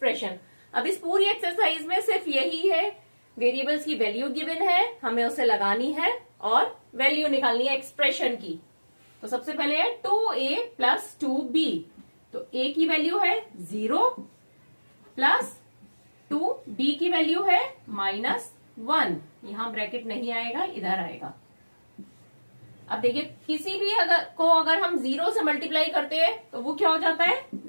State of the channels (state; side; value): inverted; both; correlation -1.00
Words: अब इस पूरी एक्सरसाइज में सिर्फ यही है, वेरिएबल्स की वैल्यू गिवन है, हमें उसे लगानी है और वैल्यू निकालनी है एक्सप्रेशन की। तो सबसे पहले है 2a + 2b, तो a की वैल्यू है 0 प्लस 2b की वैल्यू है -1, यहां ब्रैकेट नहीं आएगा, इधर आएगा। अब देखिए किसी भी अगर हम 0 से मल्टीप्लाई करते हैं तो वो क्या हो जाता है,